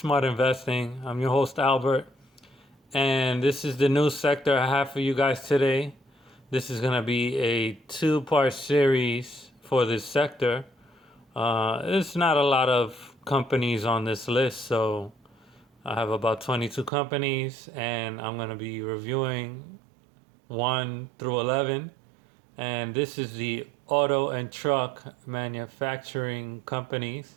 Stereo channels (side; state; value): left; drops out; at 16.9 s